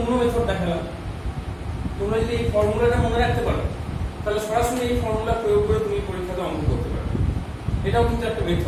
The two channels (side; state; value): both; identical; correlation 1.00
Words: মেথড দেখালাম। তোমরা যদি এই ফর্মুলাটা মনে রাখতে পারো তাহলে সরাসরি এই ফর্মুলা প্রয়োগ করে তুমি পরীক্ষাতে অঙ্ক করতে পারো। এটাও কিন্তু একটা